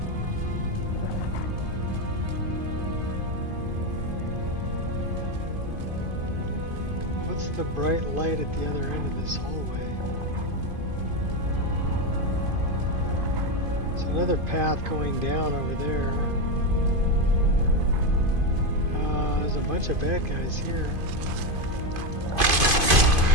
Just a bright light at the other end of this hallway. So another path going down over there. There's a bunch of bad guys here.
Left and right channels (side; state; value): left; late; 2.5 ms